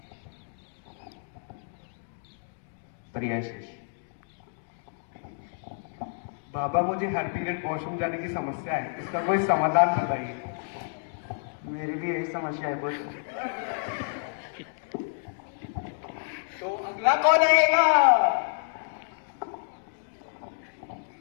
प्रिय शिष्य। बाबा, मुझे हर पीरियड वॉशरूम जाने की समस्या है, इसका कोई समाधान बताइए। मेरी भी यही समस्या है पुत्र। तो अगला कौन आएगा?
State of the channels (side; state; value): right; silent; digital silence